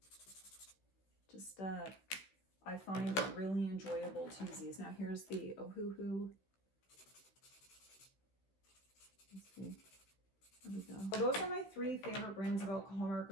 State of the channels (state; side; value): late; right; 16 ms